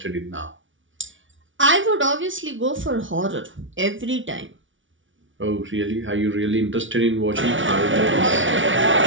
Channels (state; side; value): late; left; 0.56 ms